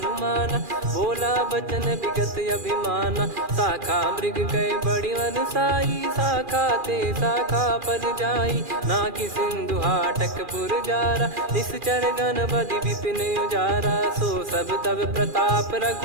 बोला बचन विगत अभिमाना शाखा मृग गए बड़ी वनसाई शाखा ते शाखा पर जाई ना कि सिंधु हाटक पुर जारा निश्चर गण बदि विपिन उजारा सो सब तब प्रताप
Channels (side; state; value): left; late; 2.4 ms